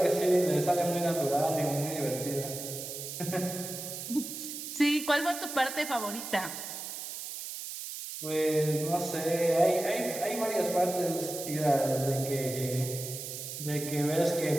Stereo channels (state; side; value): noise; right; hiss, 8 dB below the sound